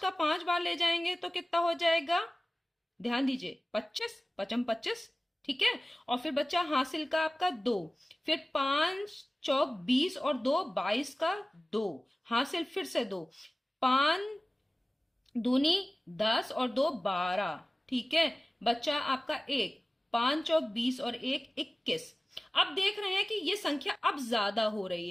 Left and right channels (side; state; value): both; normal; correlation 0.97